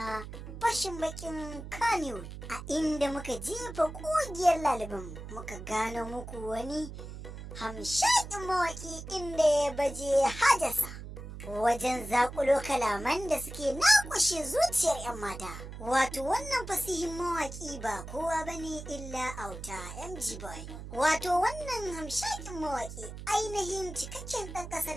fashin bakin Kannywood, a inda muka jefa kugiyar laliban muka gano muku wani hamshakin mawaki inda ya baje hajasa wajen zakulo kalaman da suke nakushe zuciyar 'yan mata. Wato wannan fasihin mawaki ba kowa bane illa Auta MG Boy. Wato wannan hamshakin mawaki ainihin cikakken ɗan ƙasar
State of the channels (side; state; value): right; noise; hum, 11 dB below the sound